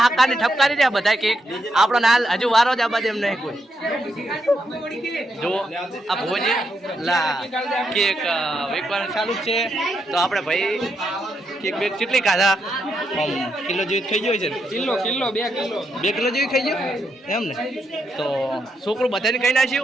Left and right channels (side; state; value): both; normal; correlation 0.81